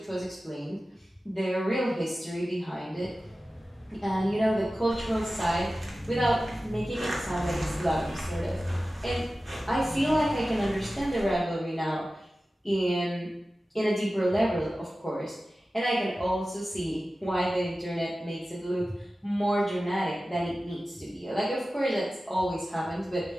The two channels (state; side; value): normal; both; correlation 0.95